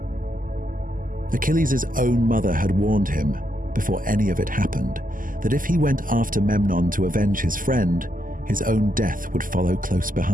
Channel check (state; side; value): late; left; 0.40 ms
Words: Achilles' own mother had warned him, before any of it happened, that if he went after Memnon to avenge his friend, his own death would follow close